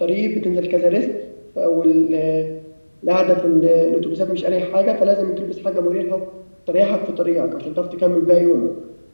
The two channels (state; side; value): inverted; both; correlation -1.00